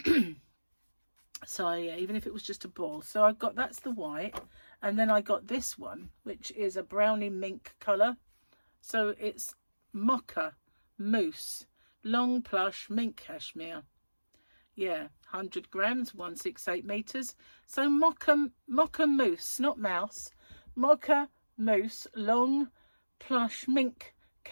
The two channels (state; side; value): inverted; both; correlation -1.00